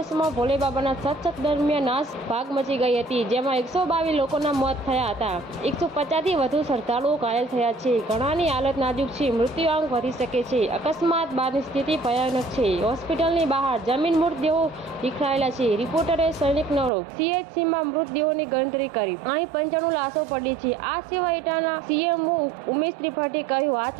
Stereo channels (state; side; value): drops out; left; at 16.9 s